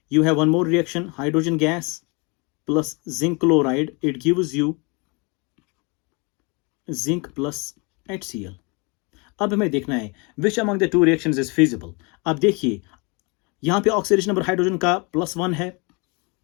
You have one more reaction, hydrogen gas plus zinc chloride. It gives you zinc plus HCl. अब हमें देखना है which among the two reactions is feasible. अब देखिए यहाँ पे oxidation number hydrogen का +1 है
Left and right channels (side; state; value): right; quieter; 30.2 dB